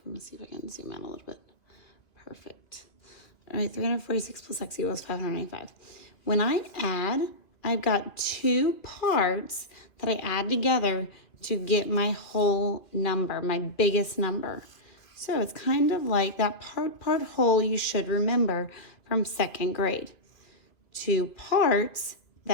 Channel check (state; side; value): late; right; 2.5 ms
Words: me see if I can zoom out a little bit. Perfect. All right, 346 plus x equals 595. When I add, I've got two parts that I add together to get my whole number, my biggest number. So it's kind of like that part whole you should remember from second grade. Two parts